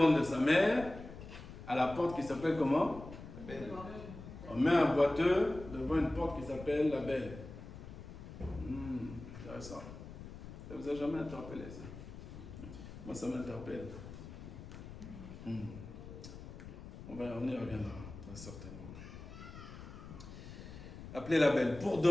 de sa mère à la porte qui s'appelle comment? La Belle. On met un boiteux devant une porte qui s'appelle la Belle. Intéressant. Ça vous a jamais interpellé, ça? Moi, ça m'interpelle. On y reviendra, très certainement. Appelez la Belle pour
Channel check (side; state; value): left; noise; rumble, 13 dB below the sound